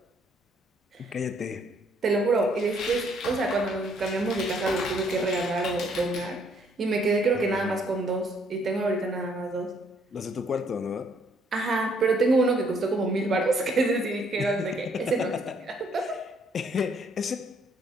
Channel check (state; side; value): normal; both; correlation 0.67